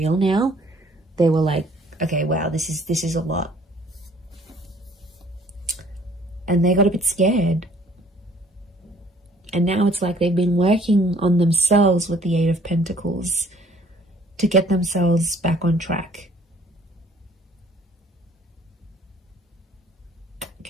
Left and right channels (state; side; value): normal; both; correlation 0.57